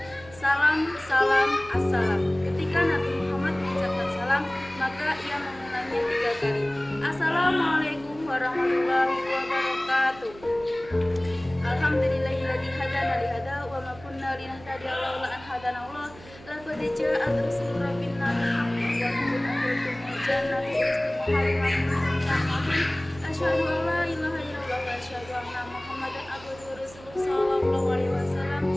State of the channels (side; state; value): right; noise; hum, 20 dB below the sound